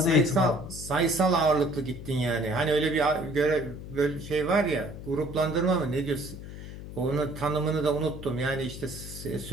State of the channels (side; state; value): left; noise; hum, 11 dB below the sound